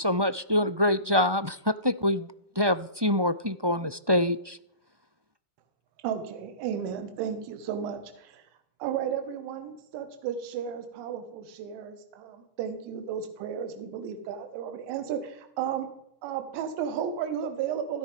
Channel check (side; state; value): left; late; 1.2 ms